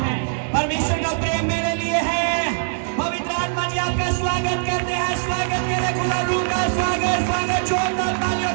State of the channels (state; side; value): silent; left; 64 dB below the other